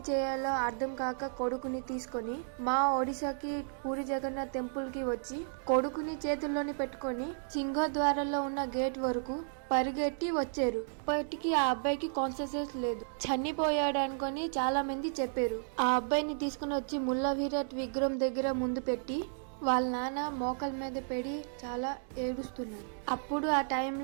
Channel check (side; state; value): left; silent; digital silence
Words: చేయాలో అర్థం కాక కొడుకుని తీసుకొని మా ఒడిశాకి పూరి జగన్నాథ్ టెంపుల్ కి వచ్చి కొడుకుని చేతుల్లోని పెట్టుకొని సింహద్వారంలో ఉన్న గేట్ వరకు పరిగెట్టి వచ్చారు. ఇప్పటికీ ఆ అబ్బాయికి కాన్షియస్నెస్ లేదు, చనిపోయాడు అనుకొని చాలా మంది చెప్పారు. ఆ అబ్బాయిని తీసుకుని వచ్చి ముల్లా విరాట్ విగ్రహం దగ్గర ముందు పెట్టి వాళ్ళ నాన్న మోకాల మీద పెడి చాలా ఏడుస్తున్నారు. అప్పుడు ఆ